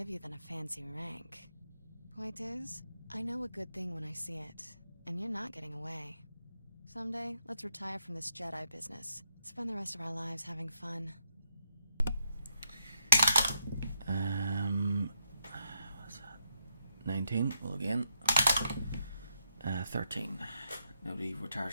you than a fancy rank. Point is, I know a good thing when I see it, and you're not getting away. Someday, let's retire from this Jedi business. Spend the rest of our lives having fun. What's that? 19. Well, again. 13. Nobody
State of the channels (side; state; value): both; inverted; correlation -0.79